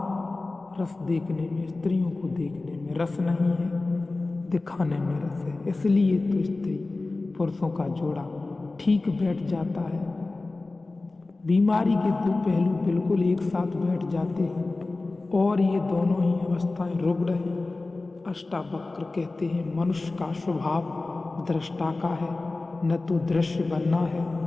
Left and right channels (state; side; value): quieter; right; 3.3 dB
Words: रस देखने में, स्त्रियों को देखने में रस नहीं है, दिखाने में रस है। इसलिए तो स्त्री पुरुषों का जोड़ा ठीक बैठ जाता है। बीमारी के दो पहलू बिल्कुल एक साथ बैठ जाते हैं और ये दोनों ही अवस्थाएं रुग्ण हैं। अष्टावक्र कहते हैं मनुष्य का स्वभाव दृष्टा का है, न तो दृश्य बनना है